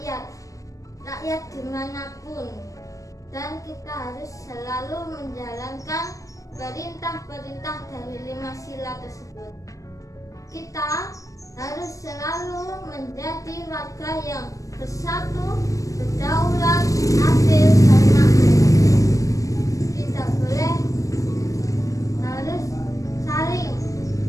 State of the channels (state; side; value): late; right; 0.16 ms